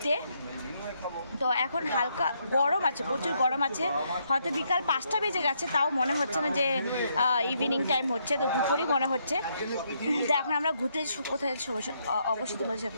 তো এখন হালকা গরম আছে, প্রচুর গরম আছে, হয়তো বিকাল 5টা বেজে গেছে, তাও মনে হচ্ছে না যে ইভিনিং টাইম হচ্ছে, তো দুপুরই মনে হচ্ছে। তো এখন আমরা ঘুরতে কোথায় যাচ্ছি অবশ্যই তোমাদের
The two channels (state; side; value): inverted; both; correlation -0.75